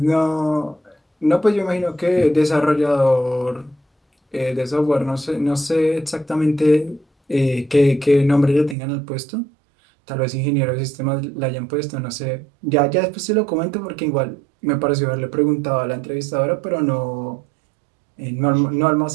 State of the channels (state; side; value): drops out; left; at 8.8 s